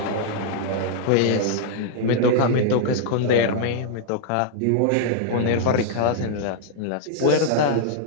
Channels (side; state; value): both; different; correlation -0.01